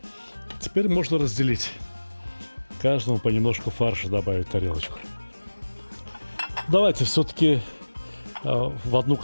Теперь можно разделить. Каждому понемножку фарша добавить в тарелочку. Давайте все-таки в одну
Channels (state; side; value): inverted; both; correlation -1.00